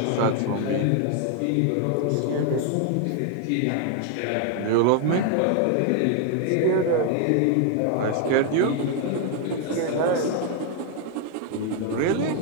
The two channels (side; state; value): both; different; correlation 0.01